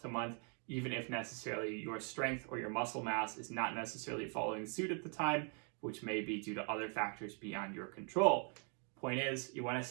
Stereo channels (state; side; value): quieter; left; 38.7 dB